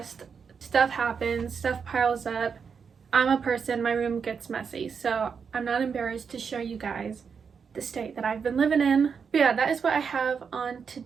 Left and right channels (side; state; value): left; quieter; 6.2 dB